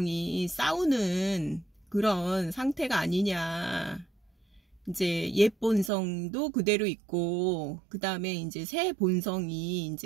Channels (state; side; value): drops out; left; at 5.9 s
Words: 싸우는 그런 상태가 아니냐. 이제 옛 본성도 그대로 있고, 그 다음에 이제 새 본성이